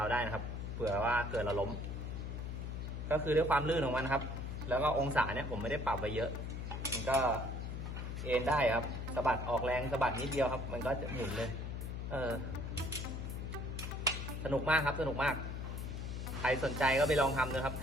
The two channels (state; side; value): noise; left; hum, 5 dB below the sound